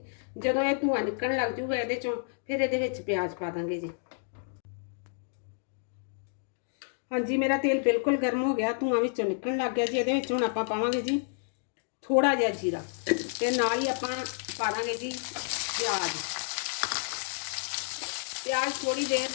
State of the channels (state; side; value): silent; right; digital silence